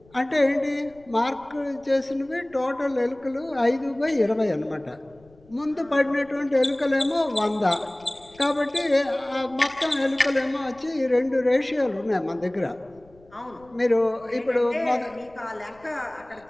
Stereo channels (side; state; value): left; noise; rumble, 28 dB below the sound